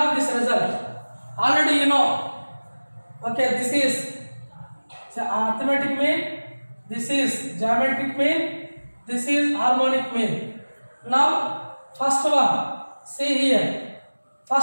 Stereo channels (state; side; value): inverted; both; correlation -1.00